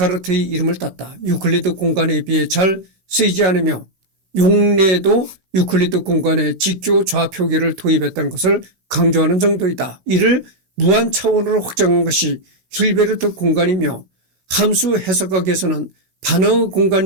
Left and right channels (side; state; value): left; late; 16 ms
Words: 이름을 땄다. 유클리드 공간에 비해 잘 쓰이지 않으며 용례도 유클리드 공간에 직교 좌표계를 도입했다는 것을 강조하는 정도이다. 이를 무한 차원으로 확장한 것이 힐베르트 공간이며 함수 해석학에서는 반응